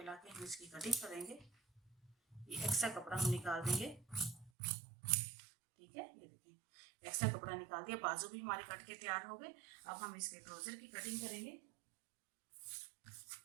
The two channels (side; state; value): left; drops out; at 4.5 s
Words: लाके हम इसकी कटिंग करेंगे। ये एक्स्ट्रा कपड़ा हम निकाल देंगे। ठीक है, ये देखिए एक्स्ट्रा कपड़ा निकाल दिया, बाजू भी हमारे कट के तैयार हो गए। अब हम इसके ट्राउजर की कटिंग करेंगे।